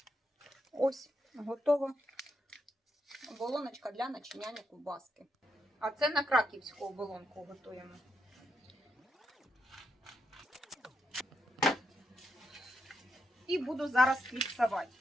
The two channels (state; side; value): normal; both; correlation 0.82